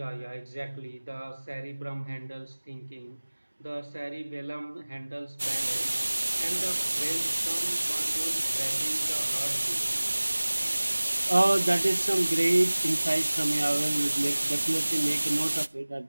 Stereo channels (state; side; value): inverted; both; correlation -1.00